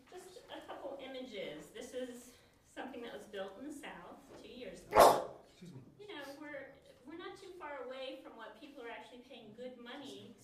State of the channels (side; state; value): both; identical; correlation 1.00